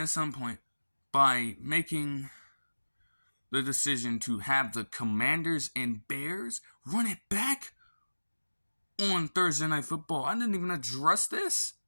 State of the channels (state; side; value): inverted; both; correlation -1.00